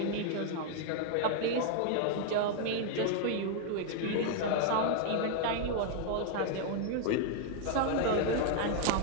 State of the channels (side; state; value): both; different; correlation 0.00